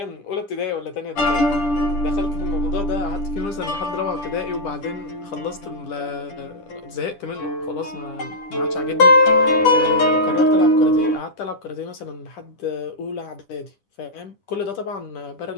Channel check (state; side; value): late; right; 10 ms